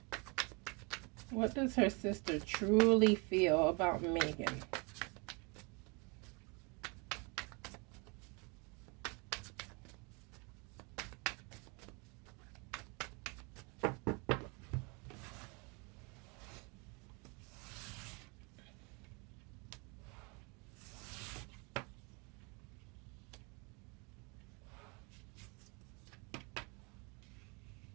what does her sister truly feel about Meghan?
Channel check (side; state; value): left; quieter; 31.4 dB